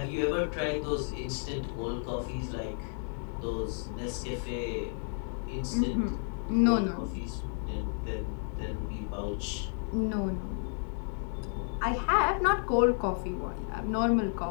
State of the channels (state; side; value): silent; right; 57 dB below the other